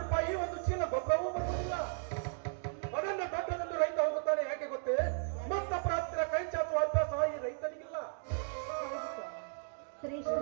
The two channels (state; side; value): silent; left; digital silence